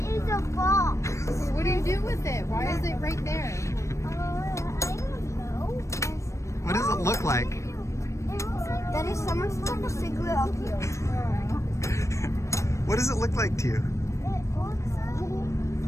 a box. What do you do with it? Why is it right there? I don't know. What does it look like? It looks like that is someone stuck a cigarette up here. What does it look like to you? It looks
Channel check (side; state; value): right; late; 0.15 ms